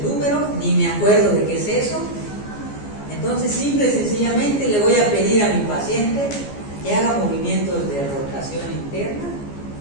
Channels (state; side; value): late; right; 14 ms